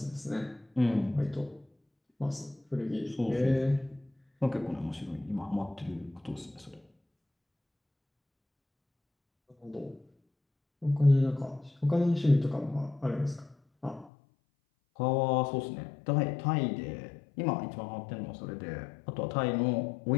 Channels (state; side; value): drops out; right; at 14.1 s